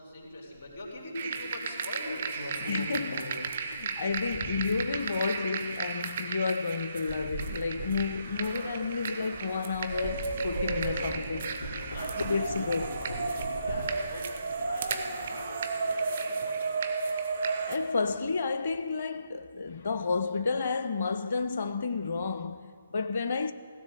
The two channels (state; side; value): inverted; both; correlation -0.76